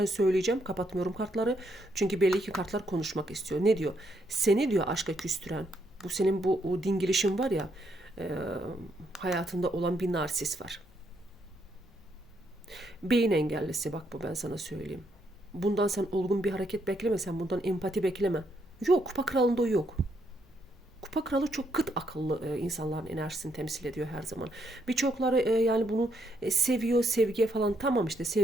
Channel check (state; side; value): normal; both; correlation 0.75